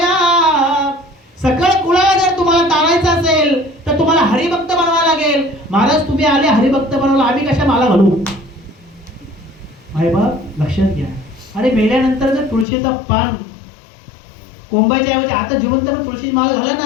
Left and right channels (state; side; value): drops out; right; at 12.7 s